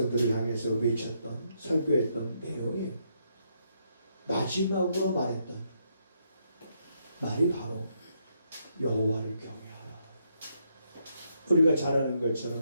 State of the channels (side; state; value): both; inverted; correlation -0.77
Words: 향해서 외쳤던, 설교했던 내용이 마지막으로 말했던 말이 바로 여호와를 경외하라. 우리가 잘 아는